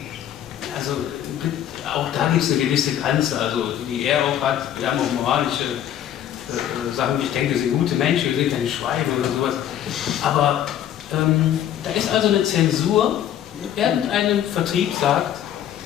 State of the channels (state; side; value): quieter; right; 10.8 dB